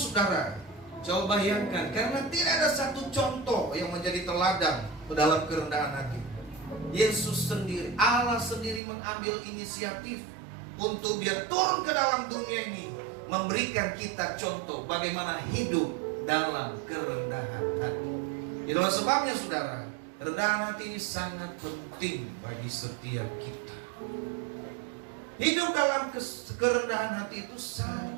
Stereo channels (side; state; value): left; drops out; at 8.8 s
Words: coba bayangkan, karena tidak ada satu contoh yang menjadi teladan dalam kerendahan hati. Yesus sendiri, Allah sendiri mengambil inisiatif untuk dia turun ke dalam dunia ini, memberikan kita contoh bagaimana hidup dalam kerendahan hati. Itulah sebabnya saudara, kerendahan hati ini sangat penting bagi setiap kita. Hidup dalam kerendahan hati itu